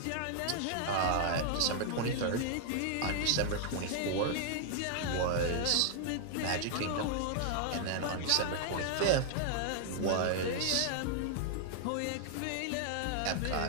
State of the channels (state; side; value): different; both; correlation 0.00